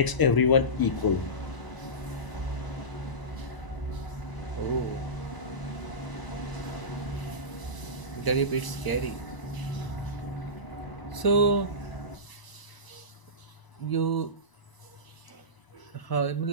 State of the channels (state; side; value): late; right; 1.0 ms